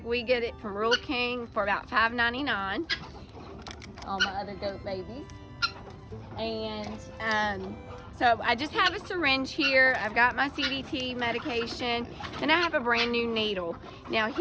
We get it from Rural King for about $5.99. All my other goat babies. And so I just have a syringe here. I've got my CDT medication, and I have a brand new needle. Now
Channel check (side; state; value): both; identical; correlation 1.00